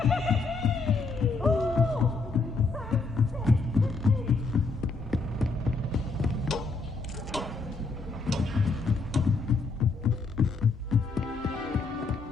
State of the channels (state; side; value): quieter; right; 4.1 dB